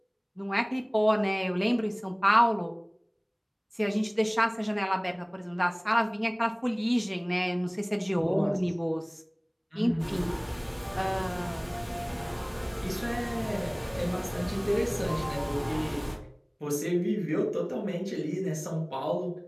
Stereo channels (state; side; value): identical; both; correlation 1.00